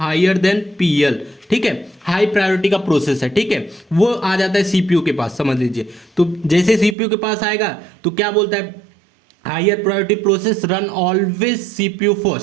than PL. ठीक है, हाई प्रायोरिटी का प्रोसेस है। ठीक है, वो आ जाता है सीपीयू के पास। समझ लीजिए, तो जैसे सीपीयू के पास आएगा तो क्या बोलता है, higher priority process run always CPU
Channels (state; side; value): drops out; left; at 7.0 s